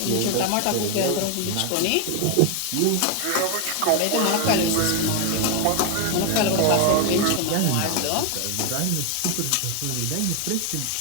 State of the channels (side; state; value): both; different; correlation 0.01